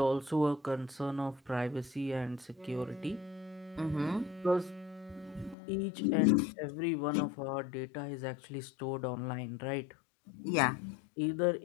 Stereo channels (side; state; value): right; drops out; at 5.6 s